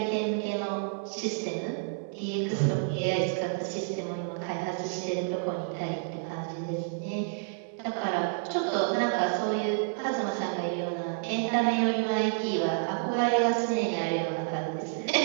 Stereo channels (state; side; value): silent; left; digital silence